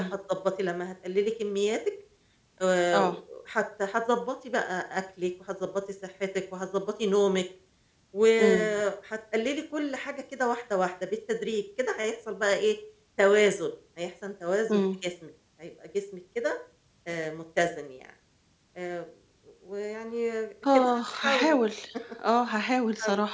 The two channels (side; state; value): both; identical; correlation 1.00